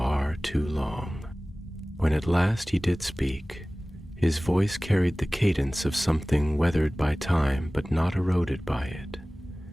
too long. When at last he did speak, His voice carried the cadence of something weathered by time but not eroded by it,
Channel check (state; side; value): normal; both; correlation 0.98